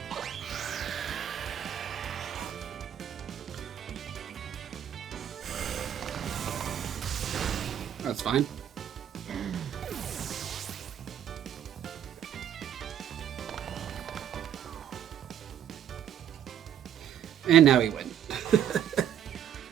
That's fine. And now we win.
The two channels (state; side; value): quieter; left; 9.8 dB